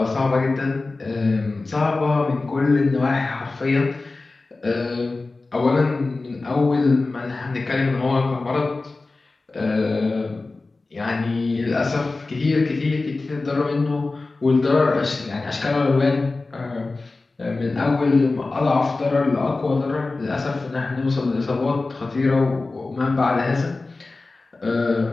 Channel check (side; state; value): right; quieter; 3.5 dB